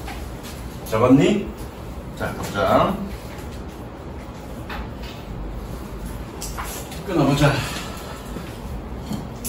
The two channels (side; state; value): both; identical; correlation 1.00